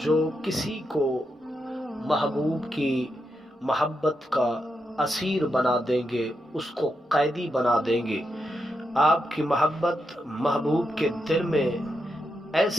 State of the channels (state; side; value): normal; both; correlation 0.85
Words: جو کسی کو محبوب کی محبت کا اسیر بنا دیں گے، اس کو قیدی بنا دیں گے۔ آپ کی محبت محبوب کے دل میں